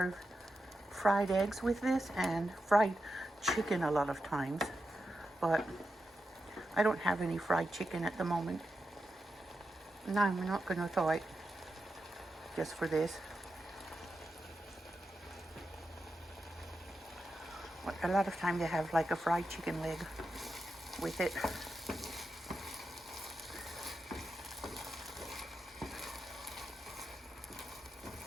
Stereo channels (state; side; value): normal; both; correlation 0.88